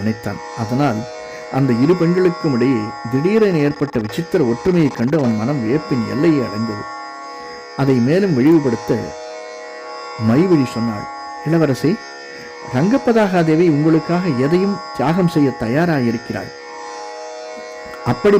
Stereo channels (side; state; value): both; identical; correlation 1.00